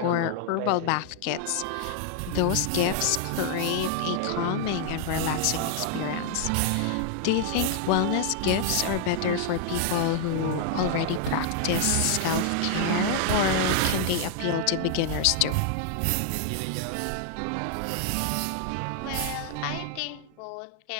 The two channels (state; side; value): different; both; correlation -0.01